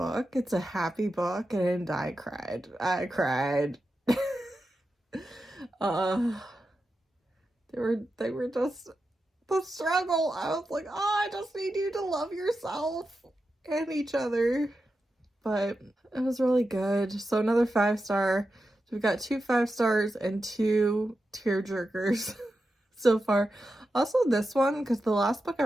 It's a happy book, and I cried. They were just the struggle. I was like, I just need you to love yourself and each other. But it was really good. So another 5-star. So we've got 2 5 stars and 2 tearjerkers so far. Also this one, because the last book I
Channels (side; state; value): both; normal; correlation 0.90